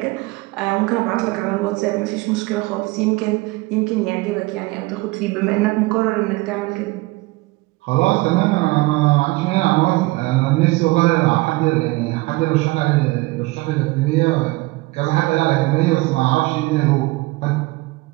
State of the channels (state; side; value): quieter; left; 22.0 dB